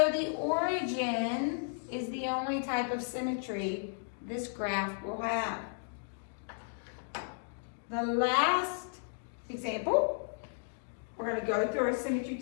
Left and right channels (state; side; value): silent; right; digital silence